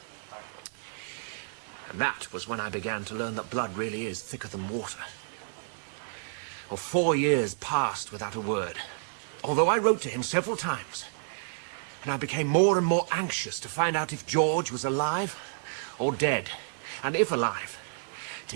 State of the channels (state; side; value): silent; left; digital silence